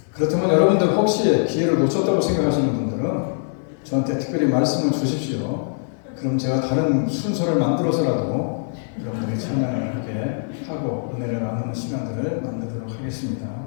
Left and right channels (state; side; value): silent; right; digital silence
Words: 그렇다면 여러분들 혹시 기회를 놓쳤다고 생각하시는 분들은 저한테 특별히 말씀을 주십시오. 그럼 제가 다른 순서를 만들어서라도 여러분들이 찬양을 하게 하고 은혜를 나누는 시간들을 만들도록 하겠습니다.